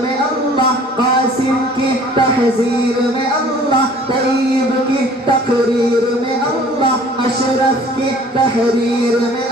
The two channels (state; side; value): normal; both; correlation 0.51